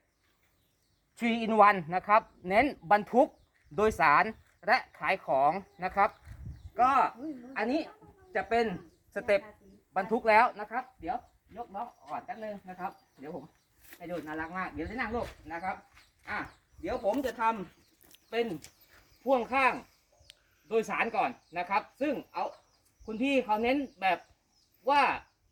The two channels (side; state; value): both; identical; correlation 1.00